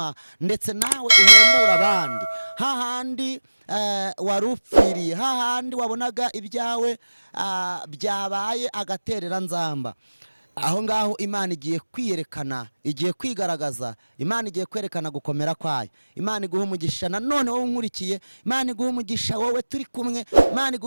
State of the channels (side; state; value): both; inverted; correlation -1.00